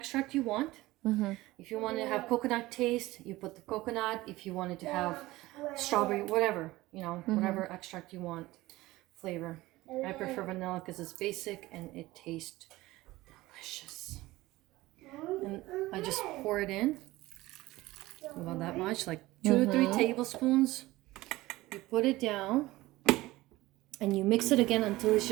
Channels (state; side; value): quieter; left; 18.5 dB